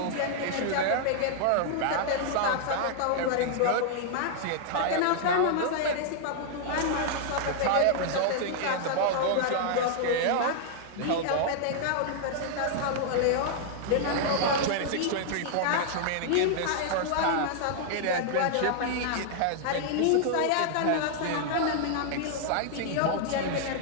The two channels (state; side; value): different; both; correlation -0.01